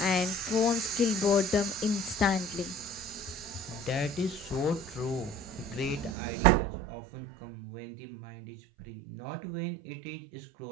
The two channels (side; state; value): left; drops out; at 6.2 s